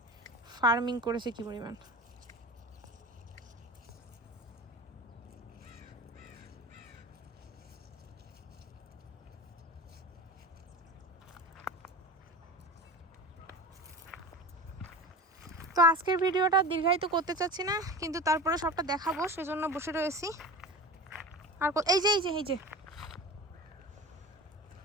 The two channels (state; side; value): normal; both; correlation 0.32